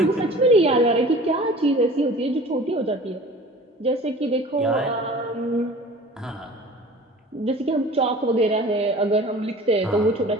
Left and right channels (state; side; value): normal; both; correlation 0.43